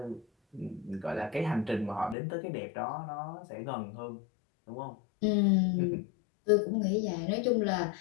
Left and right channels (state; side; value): drops out; right; at 2.1 s